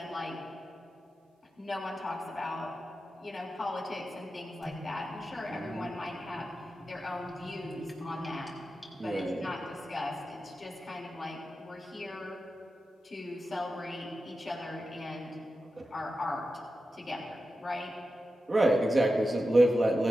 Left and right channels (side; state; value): both; normal; correlation 0.91